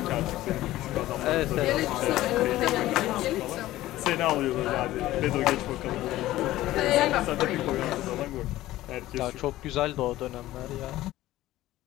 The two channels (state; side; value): quieter; right; 15.7 dB